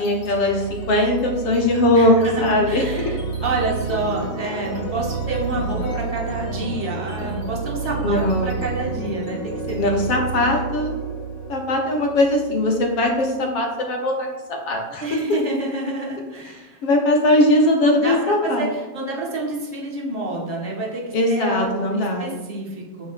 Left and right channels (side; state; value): right; late; 7.3 ms